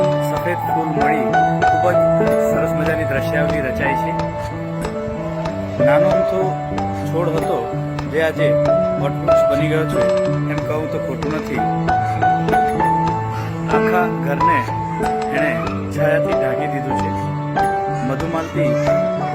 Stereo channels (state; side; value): identical; both; correlation 1.00